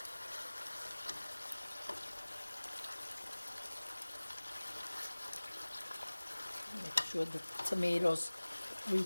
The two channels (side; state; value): both; inverted; correlation -1.00